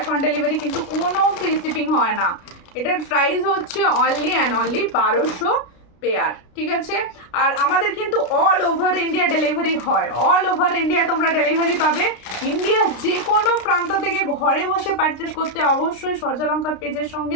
on delivery কিন্তু কোনো ফ্রি শিপিং হয় না। এটার প্রাইস হচ্ছে অনলি অ্যান্ড অনলি 1200 পেয়ার, ঠিক আছে। আর আমাদের কিন্তু অল ওভার ইন্ডিয়া ডেলিভারি হয়, অল ওভার ইন্ডিয়া তোমরা ডেলিভারি পাবে। ইন্ডিয়ার যে কোনো প্রান্ত থেকে ঘরে বসে পারচেস করতে অবশ্যই সূর্যালঙ্কার পেজের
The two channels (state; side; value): late; right; 33 ms